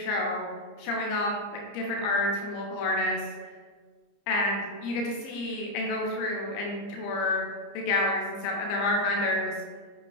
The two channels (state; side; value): late; right; 30 ms